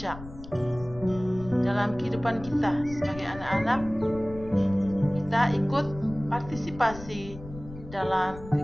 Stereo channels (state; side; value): noise; left; rumble, 15 dB below the sound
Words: dalam kehidupan kita sebagai anak-anak, kita ikut partisipasi dalam